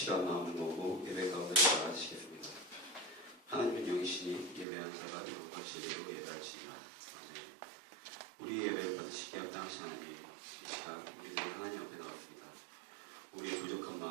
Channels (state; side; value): drops out; left; at 4.7 s